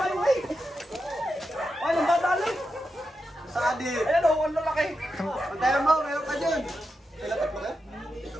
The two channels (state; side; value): normal; both; correlation 0.88